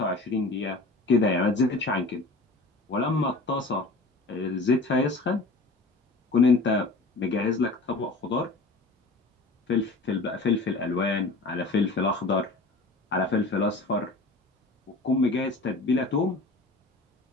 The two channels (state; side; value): quieter; right; 3.3 dB